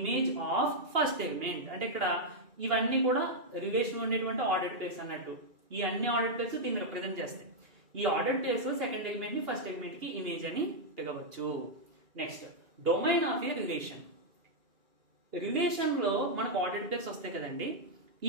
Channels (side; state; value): left; late; 2.8 ms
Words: of first element. అంటే ఇక్కడ ఇవన్నీ కూడా రిలేషన్ ఉండేటువంటి ఆర్డర్డ్ పేర్స్ అన్నట్టు. ఈ అన్ని ఆర్డర్డ్ పేర్స్ దీన్ని రిప్రజెంట్ చేస్తాయి. ఈ ఆర్డర్డ్ పేర్స్ సెకండ్ ఎలిమెంట్ ని ఫస్ట్ ఎలిమెంట్ కి ఇమేజ్ అని పిలవచ్చు. Next, domain of A relation. Relation లో మనకు ఆర్డర్డ్ పేర్స్ వస్తాయి కదండి.